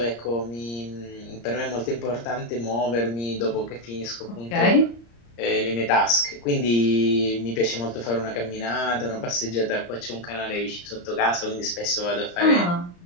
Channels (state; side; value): late; right; 34 ms